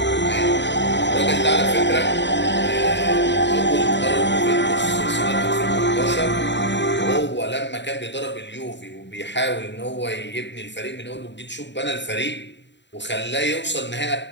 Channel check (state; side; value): late; right; 0.52 ms